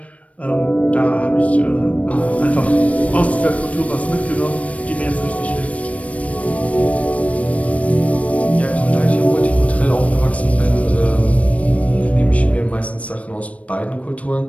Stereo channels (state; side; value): late; right; 0.065 ms